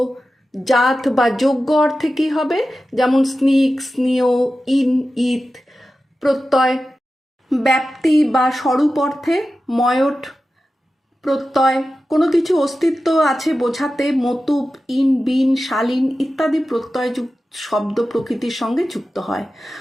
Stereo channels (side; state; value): both; normal; correlation 0.93